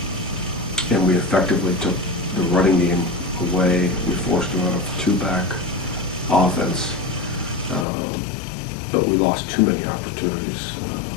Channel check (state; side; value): drops out; right; at 7.9 s